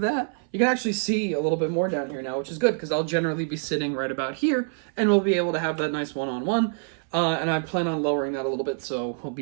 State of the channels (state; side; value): silent; left; 61 dB below the other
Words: that. You can actually see a little bit more down here now, which is good, because I'll generally be sitting right about here, and we'll be able to have that nice one-on-one, and I plan on lowering that a little bit, so we'll